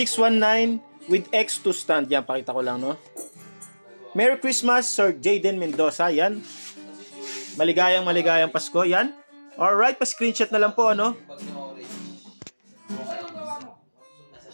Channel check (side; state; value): both; inverted; correlation -1.00